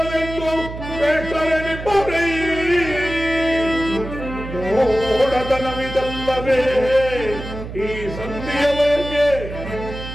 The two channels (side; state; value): right; noise; hum, 10 dB below the sound